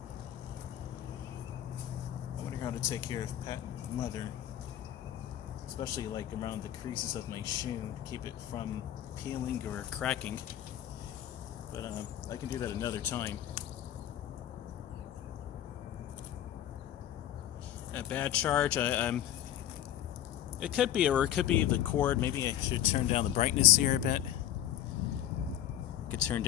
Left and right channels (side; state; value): right; quieter; 11.6 dB